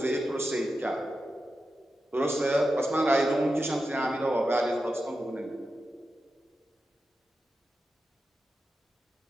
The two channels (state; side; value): normal; both; correlation 0.90